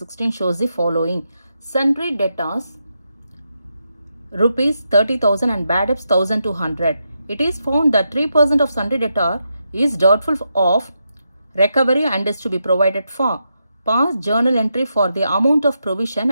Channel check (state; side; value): inverted; both; correlation -0.84